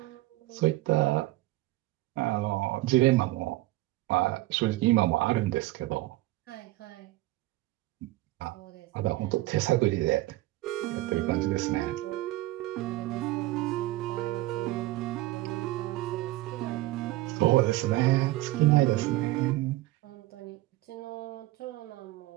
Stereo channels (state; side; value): quieter; left; 17.9 dB